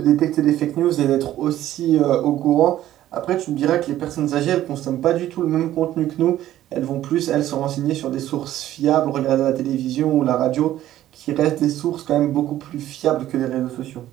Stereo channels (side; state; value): left; quieter; 13.2 dB